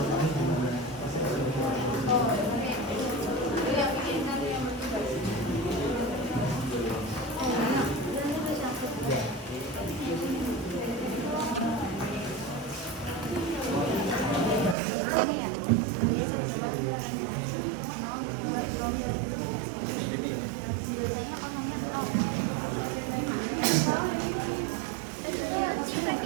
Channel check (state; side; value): drops out; left; at 14.8 s